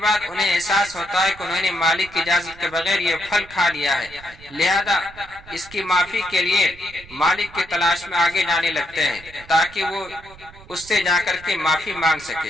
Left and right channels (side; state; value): right; noise; rumble, 21 dB below the sound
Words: انہیں احساس ہوتا ہے کہ انہوں نے مالک کی اجازت کے بغیر یہ پھل کھا لیا ہے، لہذا اس کی معافی کے لیے مالک کی تلاش میں آگے جانے لگتے ہیں تاکہ وہ اس سے جا کر کے معافی مانگ